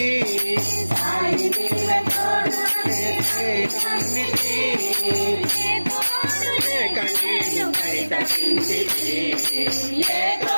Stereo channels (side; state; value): both; inverted; correlation -1.00